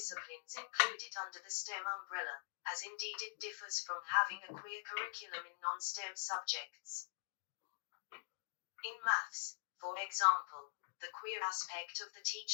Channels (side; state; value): right; silent; digital silence